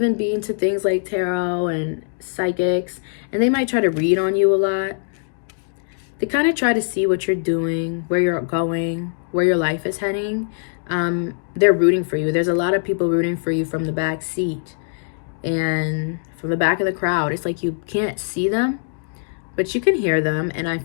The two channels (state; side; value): silent; right; digital silence